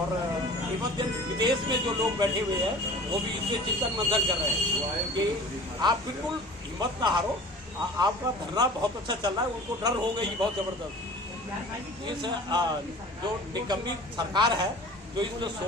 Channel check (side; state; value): both; normal; correlation 0.42